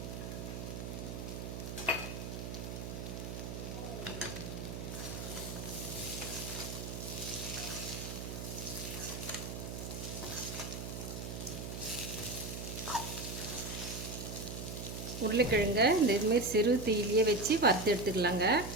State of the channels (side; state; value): right; noise; hum, 6 dB below the sound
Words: உருளைக்கிழங்க இந்த இதுமாரி சிறு தீயிலேயே வச்சு வறுத்து எடுத்துக்கலாங்க.